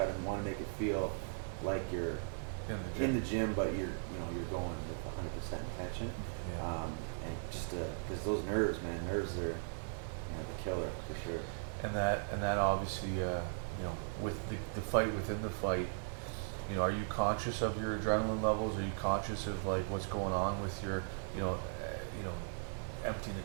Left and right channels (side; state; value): left; silent; 52 dB below the other